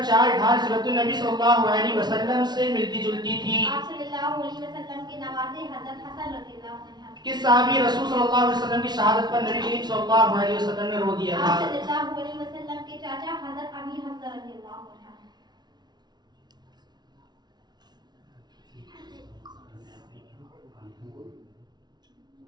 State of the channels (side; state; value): left; late; 0.20 ms